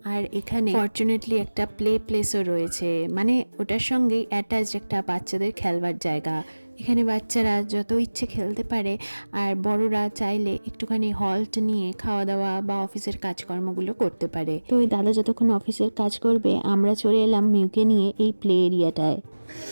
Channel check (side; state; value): both; inverted; correlation -1.00